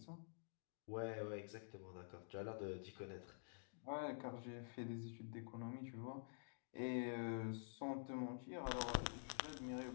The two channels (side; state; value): right; silent; digital silence